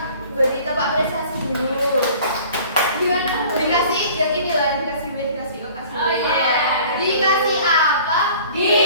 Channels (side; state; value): both; inverted; correlation -0.48